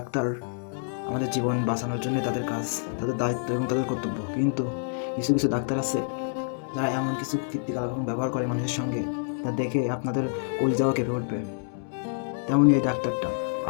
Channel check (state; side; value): silent; right; digital silence